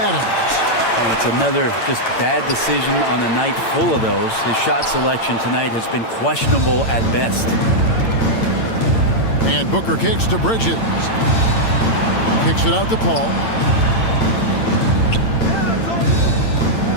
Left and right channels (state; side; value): late; right; 8.9 ms